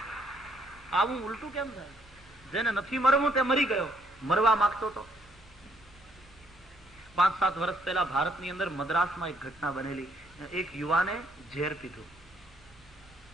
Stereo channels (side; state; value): both; normal; correlation 0.69